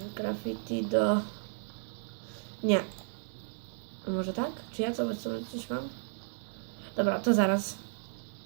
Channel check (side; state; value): left; silent; digital silence